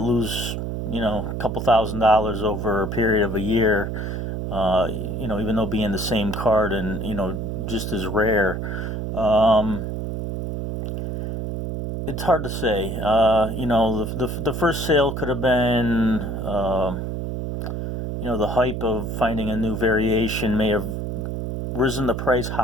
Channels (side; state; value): right; noise; hum, 4 dB below the sound